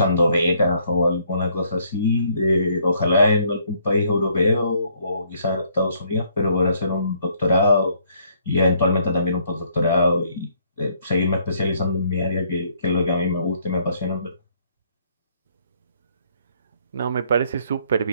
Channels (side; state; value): both; inverted; correlation -0.66